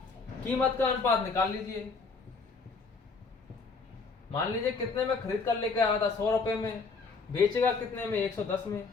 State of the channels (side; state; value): right; quieter; 4.4 dB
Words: कीमत का अनुपात निकाल लीजिए। मान लीजिए कितने में खरीद कर लेकर आया था, 100 रुपए में, बेचेगा कितने में, 110 में।